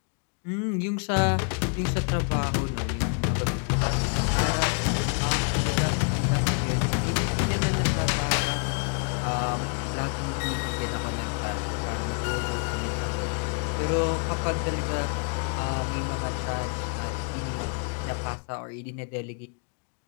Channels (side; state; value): right; quieter; 37.9 dB